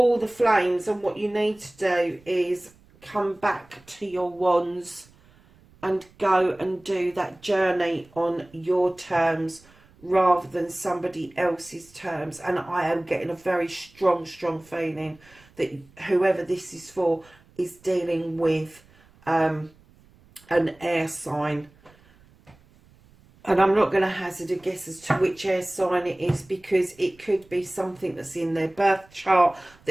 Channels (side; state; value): right; noise; rumble, 28 dB below the sound